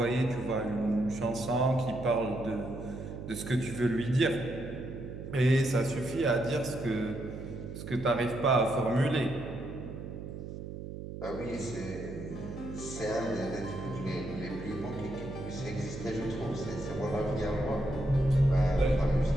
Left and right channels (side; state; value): right; noise; hum, 9 dB below the sound